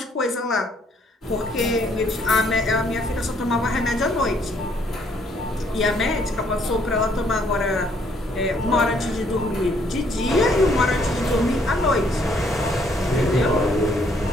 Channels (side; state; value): both; normal; correlation 0.67